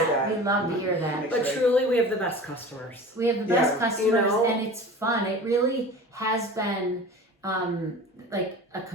that. that. We love to hear that. But truly, we have the best customers. We have the best Yeah. customers, You know? and it's fun. It really has been like a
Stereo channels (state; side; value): normal; both; correlation 0.37